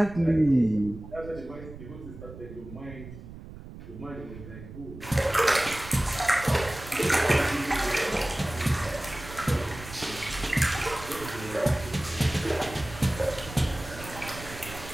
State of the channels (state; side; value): noise; right; rumble, 14 dB below the sound